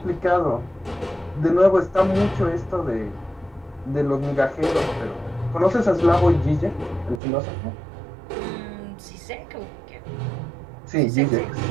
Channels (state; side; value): drops out; left; at 7.2 s